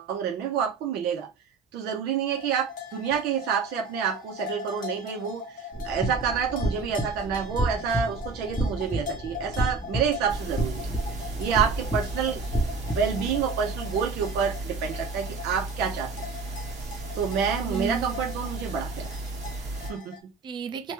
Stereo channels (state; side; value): quieter; left; 4.8 dB